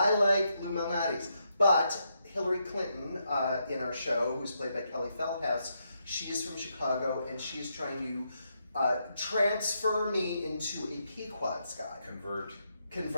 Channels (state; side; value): inverted; both; correlation -0.80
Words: like Lou Malnati's, but Hillary Clinton in our show, who's played by Kelly Feldhouse, she's from Chicago, and she's trying to transfer me into a Pequod's guy. Convert,